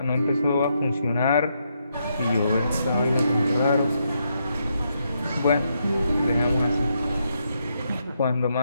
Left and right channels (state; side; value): inverted; both; correlation -0.79